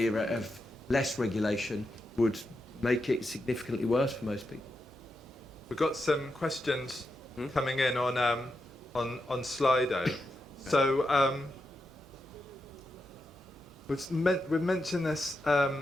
of less regulation would make it significantly worse for most people. We've got some questions coming in on Slido. So we've mentioned this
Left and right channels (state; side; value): normal; both; correlation 0.86